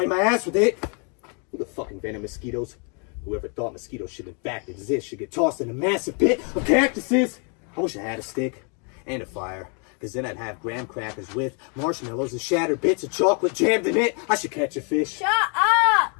my ass with it. Who the fucking venom mosquitoes? Whoever thought mosquitoes should in fact exist should get tossed in a massive pit of cactuses. I wish I had a stick and a fire, because then I'd have graham crackers with marshmallows and shattered bits of chocolate jammed in it. I should catch a fish. Shut up!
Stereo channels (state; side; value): quieter; right; 37.8 dB